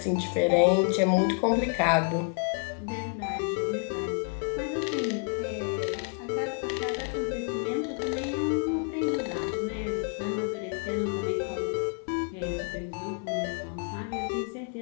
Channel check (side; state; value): right; quieter; 36.8 dB